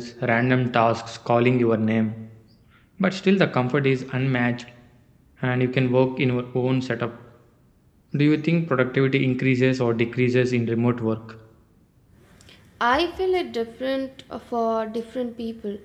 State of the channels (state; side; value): identical; both; correlation 1.00